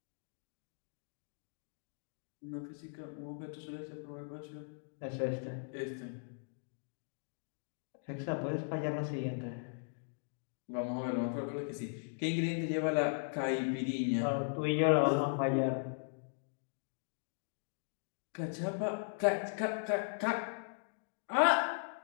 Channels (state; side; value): silent; right; digital silence